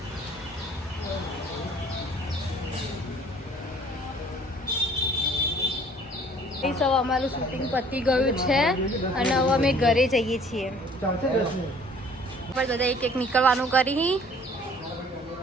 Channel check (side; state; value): both; normal; correlation 0.54